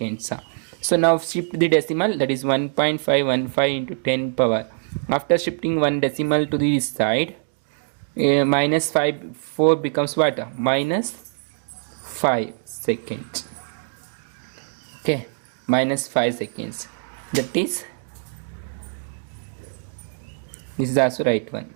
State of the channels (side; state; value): left; silent; digital silence